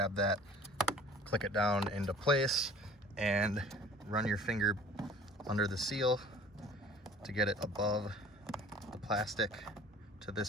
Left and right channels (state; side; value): normal; both; correlation 0.47